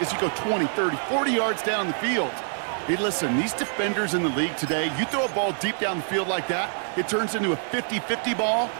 as you go 20, 30, 40 yards down the field. Hey, listen, these defenders in the league today, you throw a ball deep down the field like that, it turns into a 50-50 ball.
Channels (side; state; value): left; silent; 61 dB below the other